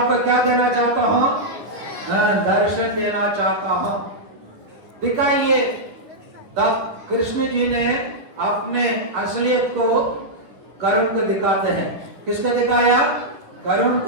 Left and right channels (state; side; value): late; left; 9.9 ms